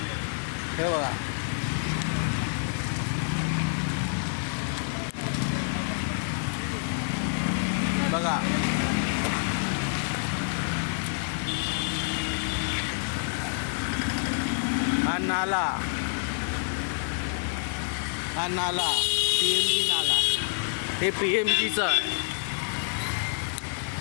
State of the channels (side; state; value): right; silent; 60 dB below the other